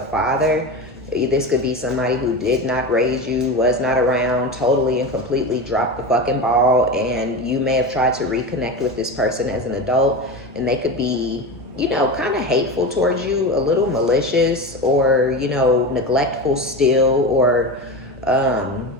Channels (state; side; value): normal; both; correlation 0.24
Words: father. This could be somebody who did not raise you, was not around, totally and completely dropped the fucking ball, and you may have tried to reconnect with this person as an adult, and they could be, you know, kind of hateful towards you, a little malicious, or, you know, neglectful still, or